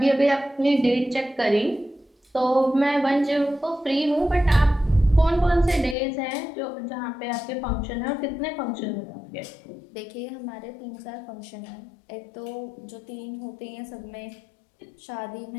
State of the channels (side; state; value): right; drops out; at 6.0 s